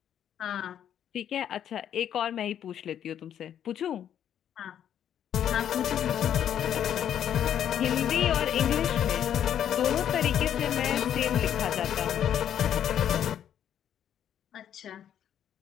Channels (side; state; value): right; quieter; 9.9 dB